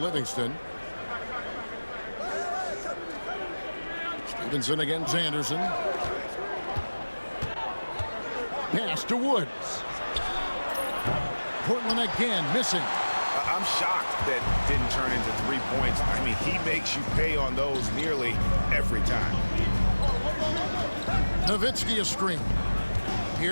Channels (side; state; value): both; inverted; correlation -1.00